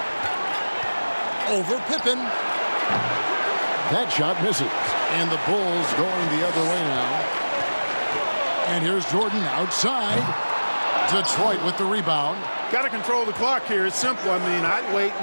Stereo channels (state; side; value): inverted; both; correlation -1.00